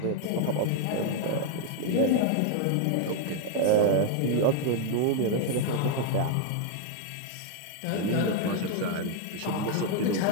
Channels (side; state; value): both; different; correlation 0.01